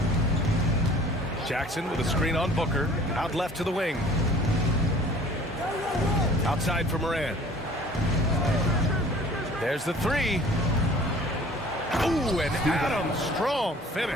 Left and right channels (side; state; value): both; normal; correlation 0.50